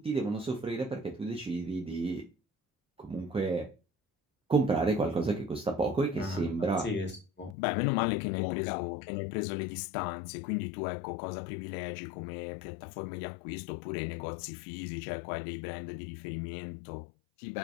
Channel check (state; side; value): drops out; right; at 7.6 s